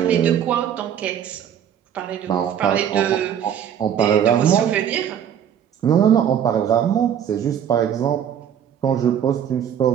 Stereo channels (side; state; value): left; quieter; 9.2 dB